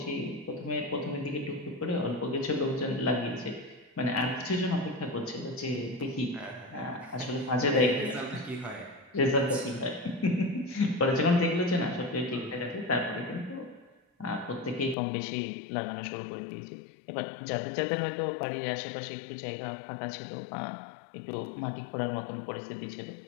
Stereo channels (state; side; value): drops out; right; at 15.0 s